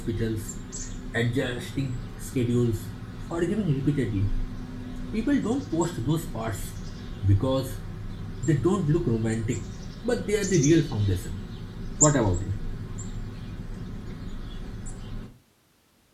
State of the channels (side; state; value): both; identical; correlation 1.00